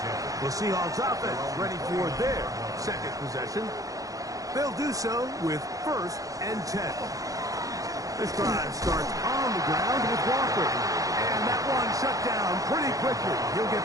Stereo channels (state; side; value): late; left; 0.17 ms